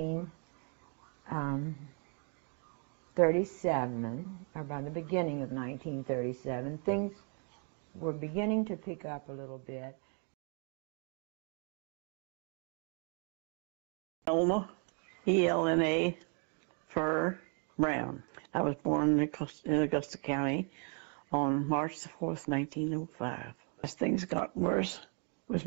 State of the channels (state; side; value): quieter; left; 38.0 dB